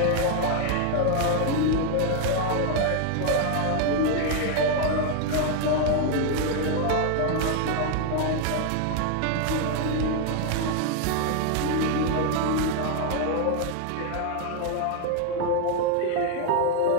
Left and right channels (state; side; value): different; both; correlation 0.00